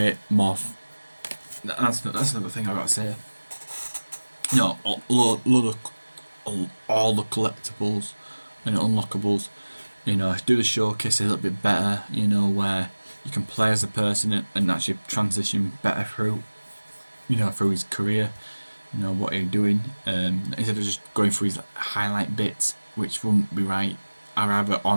more. That's another thing I gotta say. All the collectibles and unlockables. Do the showcase a little bit better. Where you can play as a person and actually transition better through his career. What you're doing. Instead of just going through his highlight bits, which wouldn't be right. I'd rather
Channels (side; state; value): both; inverted; correlation -1.00